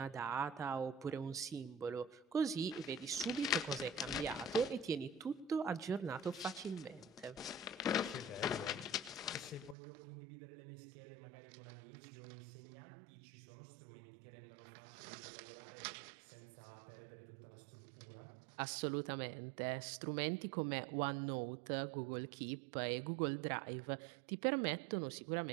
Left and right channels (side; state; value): left; drops out; at 9.8 s